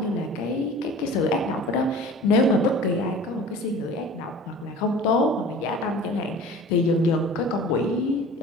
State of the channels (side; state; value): both; normal; correlation 0.41